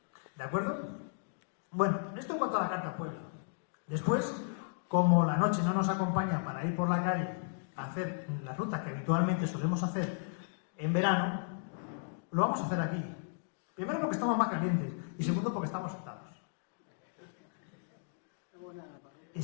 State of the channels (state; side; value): silent; right; digital silence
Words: ¿De acuerdo? Bueno, esto en cuanto a la carta al pueblo. Después, como la noche no nos acompaña para ir por la calle a hacer la ruta que habitualmente solemos hacer en verano, lo vamos a hacer aquí. Primero porque estamos más calientes y segundo porque estamos sentados. Y